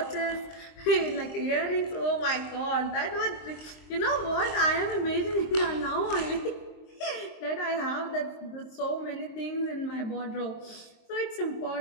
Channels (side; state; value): right; late; 23 ms